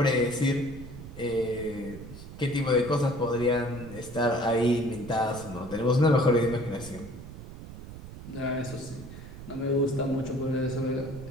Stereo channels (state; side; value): noise; right; rumble, 13 dB below the sound